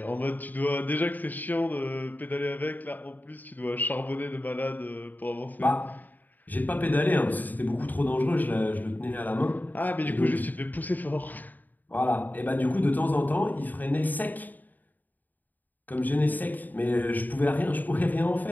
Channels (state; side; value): late; right; 0.085 ms